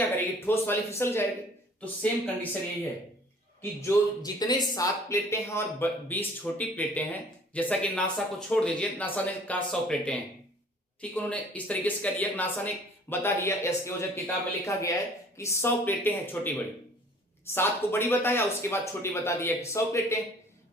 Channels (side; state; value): both; normal; correlation 0.52